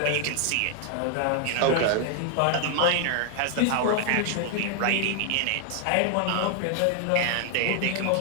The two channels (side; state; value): both; different; correlation 0.00